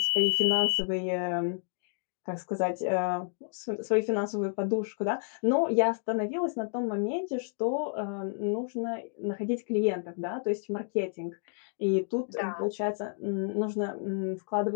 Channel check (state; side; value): silent; right; digital silence